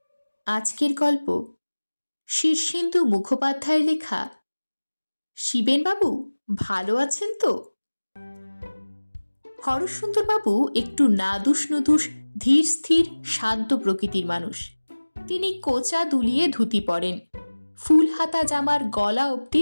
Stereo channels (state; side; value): inverted; both; correlation -1.00